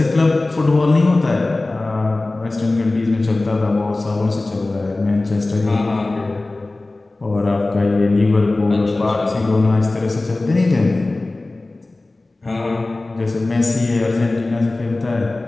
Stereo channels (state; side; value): quieter; right; 3.0 dB